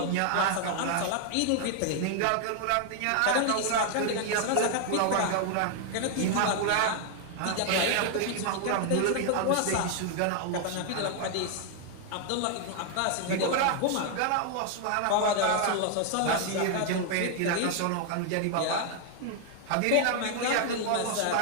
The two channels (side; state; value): both; different; correlation 0.00